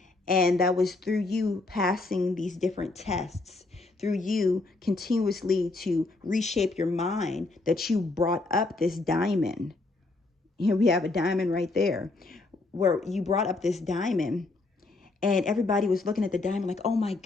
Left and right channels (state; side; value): quieter; right; 3.3 dB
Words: And that was through you passing these different tests, through you continuously to reshape your mind that you brought up this diamond. Here we have a diamond right there where you brought up this diamond. And everybody was looking at the diamond like, oh my